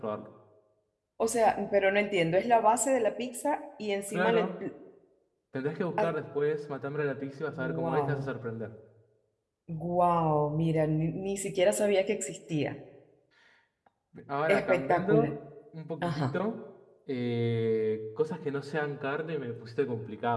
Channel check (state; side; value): identical; both; correlation 1.00